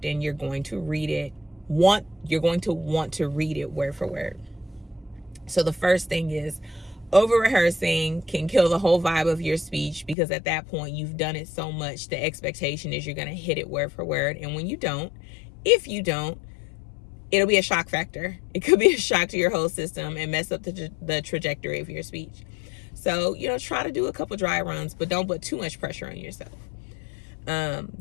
and you're going to read it. You're going to want to read it word for word. So the first thing is, over-rehearsing can kill the whole vibe of your speech, because at that point you've done it so much. The expectation is you're going to hit it word for word. And when you don't, if you don't, it'll be a shock factor. It could be a shock to your whole system and mess up the trajectory of your speech. So, try to do a couple dry runs, but don't put too much pressure on yourself.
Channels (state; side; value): drops out; right; at 10.2 s